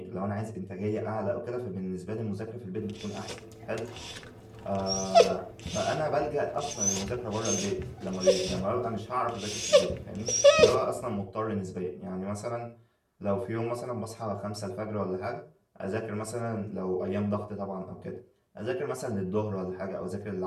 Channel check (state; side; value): identical; both; correlation 1.00